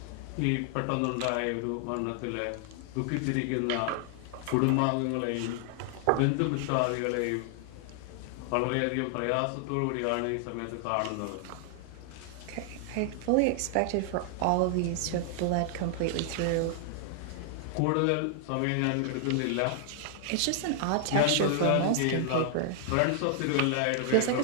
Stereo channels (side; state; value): both; different; correlation 0.00